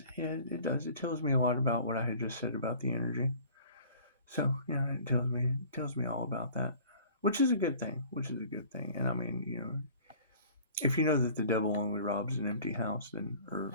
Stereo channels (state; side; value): inverted; both; correlation -0.48